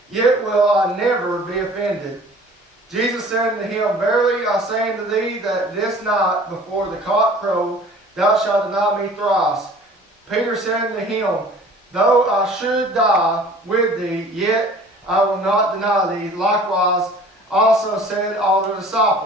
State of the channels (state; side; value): normal; both; correlation 0.47